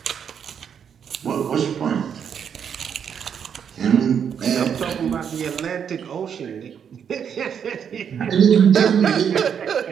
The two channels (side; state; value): left; quieter; 7.8 dB